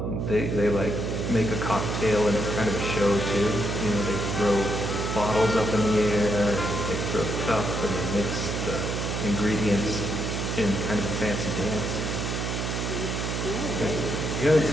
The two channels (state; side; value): noise; right; hum, 2 dB below the sound